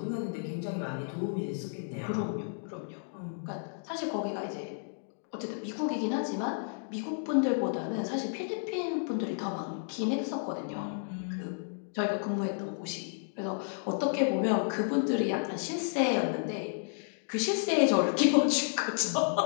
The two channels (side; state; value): right; silent; digital silence